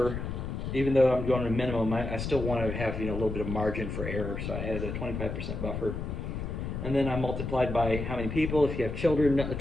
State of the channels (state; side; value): noise; left; rumble, 4 dB below the sound